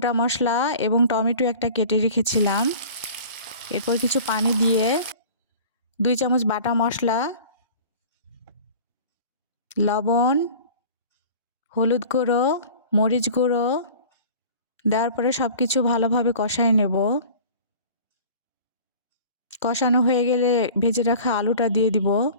মশলা এবং টমেটো একটা কেটে রেখেছিলাম। এরপর কিছু পানি দিয়ে 2 চামচ বাটা মশলা, লবণ, হলুদ গুঁড়ো, মরিচ গুঁড়ো দেওয়ার পরে সব কিছু ভালোভাবে কষায় নেব। কষানো হয়ে গেলে ভেজে রাখা আলুটা দিয়ে দিব।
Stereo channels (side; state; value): both; inverted; correlation -0.43